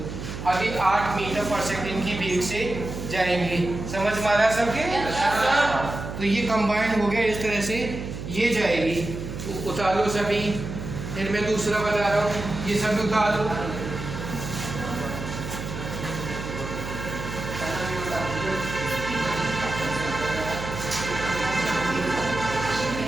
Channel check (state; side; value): noise; right; hum, 8 dB below the sound